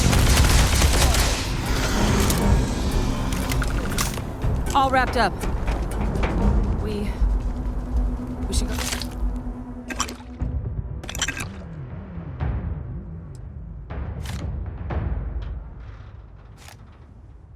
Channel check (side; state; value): both; identical; correlation 1.00